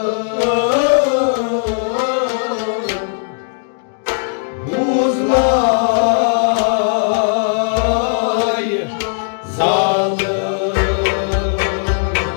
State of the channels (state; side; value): silent; right; digital silence